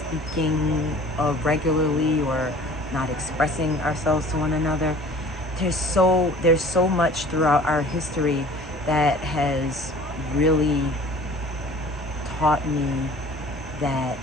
regularly or not expressing ourselves to one another. There's so much throughout our history that has really taught me that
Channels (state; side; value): normal; both; correlation 0.48